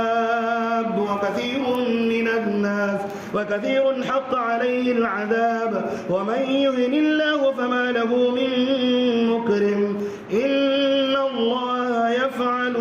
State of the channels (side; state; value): both; identical; correlation 1.00